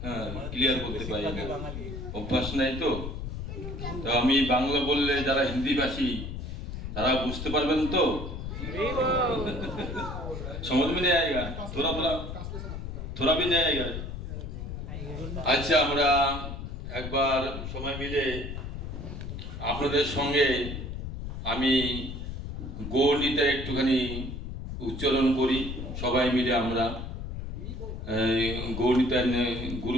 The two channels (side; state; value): left; noise; rumble, 7 dB below the sound